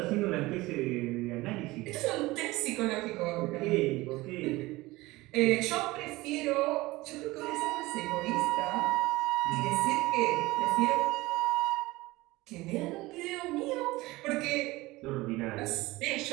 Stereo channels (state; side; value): quieter; left; 20.1 dB